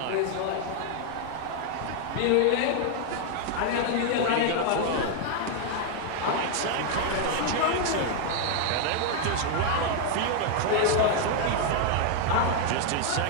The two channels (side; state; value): both; different; correlation 0.00